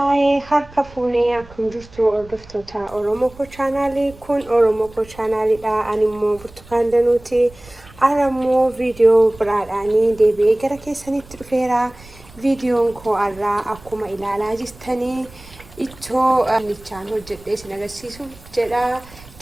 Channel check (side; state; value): right; noise; rumble, 21 dB below the sound